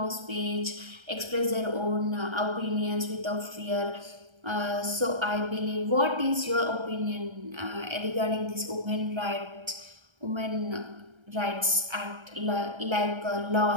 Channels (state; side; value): late; left; 1.3 ms